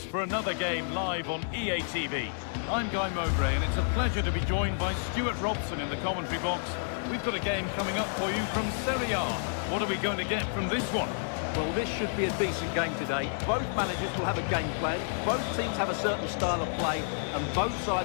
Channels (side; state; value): right; silent; digital silence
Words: for another game live on EA TV. I'm Guy Mowbray and it's a pleasure to be joined by Stuart Robson in the commentary box. We've got a game coming up for you from Serie A. What are we going to get from this one? Well, this should be a decent game today. Both managers will have a game plan. Both teams have a certain style of play and both